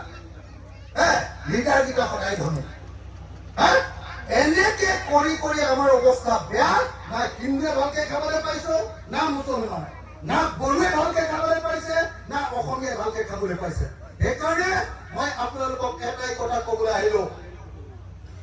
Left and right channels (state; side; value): identical; both; correlation 1.00